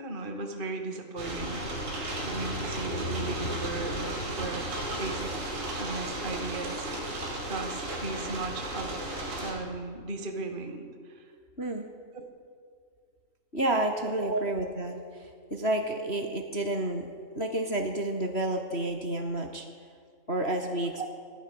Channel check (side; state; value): right; late; 3.1 ms